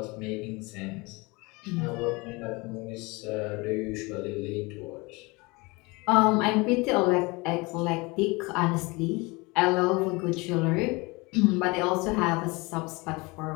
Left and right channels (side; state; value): right; quieter; 25.4 dB